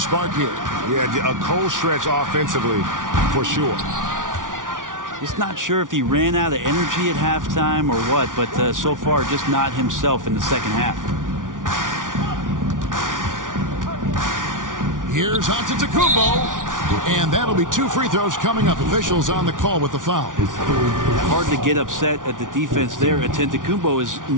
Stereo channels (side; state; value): left; late; 0.88 ms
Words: here. Yeah, a cold stretch offensively for sure. Just not sure if he ran out of energy at halftime or what, but so far just not himself in the second half. Here's Antetokounmpo. And that'll be 2 free throws coming up. Officials on the call with the foul. Hard to get upset at the defense there. Antetokounmpo is